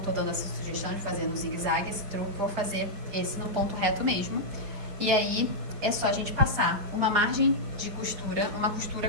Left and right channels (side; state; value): left; late; 4.9 ms